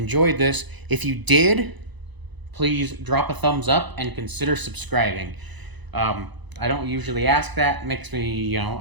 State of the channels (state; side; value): late; left; 1.0 ms